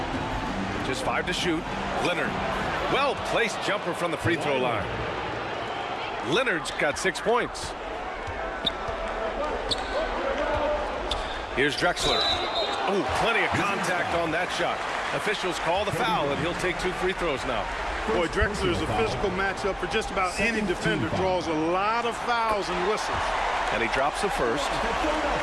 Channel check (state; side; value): identical; both; correlation 1.00